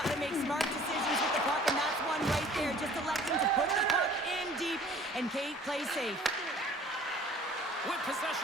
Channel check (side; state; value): both; normal; correlation 0.51